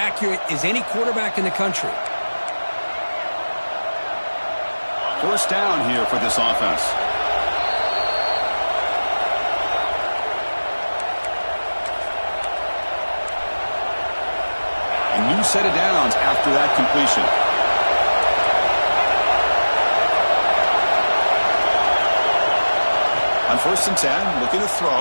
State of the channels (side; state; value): both; inverted; correlation -1.00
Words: as any quarterback in the country. First down here for this offense. A new set of downs after that completion. On first and 10, looking to